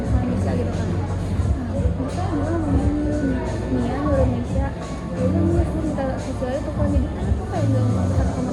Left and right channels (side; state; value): both; identical; correlation 1.00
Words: sama Misha gitu kan. Nah Misha dia ngomongin Nia nyuruh Misha, ya udah Nia gue minta Sisil itu kan jadi kan aku kayak nggak mau satu kamar